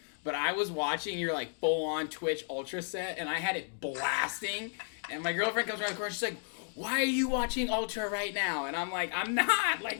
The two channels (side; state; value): right; silent; 56 dB below the other